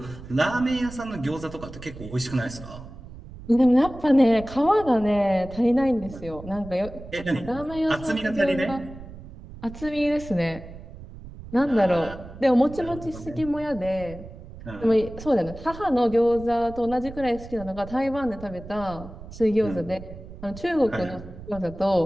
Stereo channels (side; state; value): right; noise; rumble, 15 dB below the sound